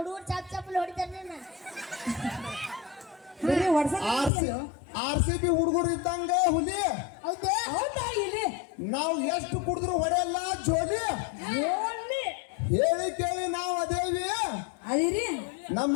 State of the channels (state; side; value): drops out; right; at 4.3 s